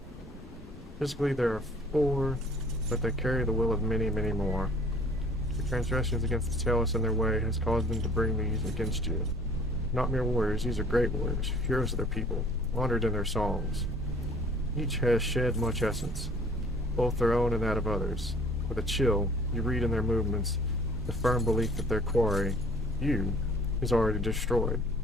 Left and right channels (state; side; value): normal; both; correlation 0.53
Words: Physically there are 4, but they carry the will of many, many more. Your transgressions against the Talos and their way has caused them to bring these against you. Not mere warriors, these are great warriors, heroes of their people, honored in their songs. Each has shed much essence, both their own and that of others. With a chill, you read in their movements the firm belief that their quarry, you, is already destroyed.